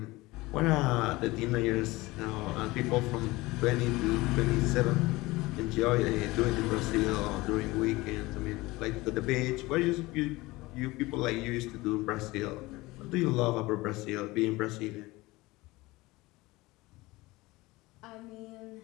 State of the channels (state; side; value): quieter; right; 20.8 dB